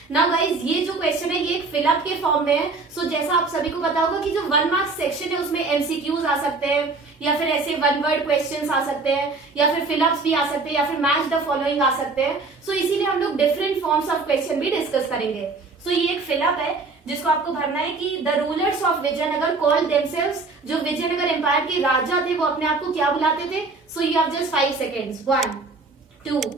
Now guys ये जो क्वेश्चन है ये एक फिलअप के फॉर्म में है। जैसा आप सभी को पता होगा कि जो 1 मार्क्स सेक्शन है उसमें एमसीक्यूज आ सकते हैं, या फिर ऐसे 1 वर्ड क्वेश्चंस आ सकते हैं, या फिर फिलअप्स भी आ सकते हैं, या फिर मैच द फॉलोइंग आ सकते हैं। इसीलिए हम लोग डिफरेंट फॉर्म्स ऑफ क्वेश्चन भी डिस्कस करेंगे। ये एक फिलअप है जिसको आपको भरना है कि the rulers of Vijayanagar called themselves, जो विजयनगर एम्पायर के राजा थे वो अपने आप को क्या बुलाते थे? You have just 5 seconds. 1, 2,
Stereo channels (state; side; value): quieter; left; 3.9 dB